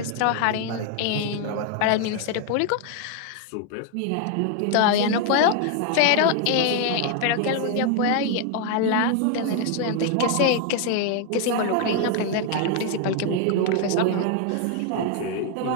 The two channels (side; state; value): both; different; correlation 0.00